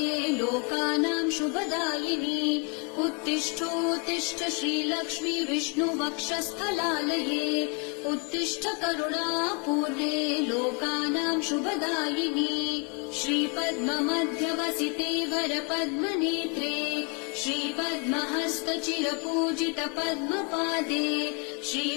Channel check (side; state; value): right; quieter; 33.2 dB